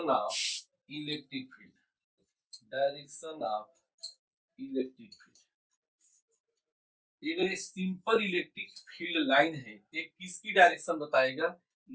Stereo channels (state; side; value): identical; both; correlation 1.00